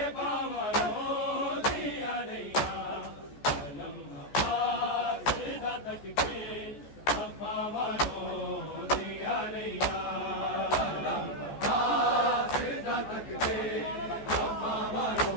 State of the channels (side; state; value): right; late; 14 ms